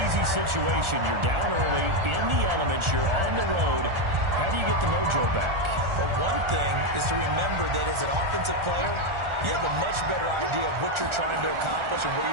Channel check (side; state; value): left; late; 1.4 ms